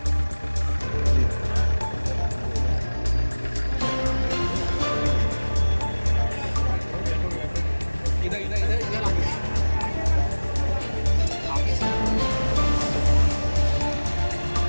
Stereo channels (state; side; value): inverted; both; correlation -1.00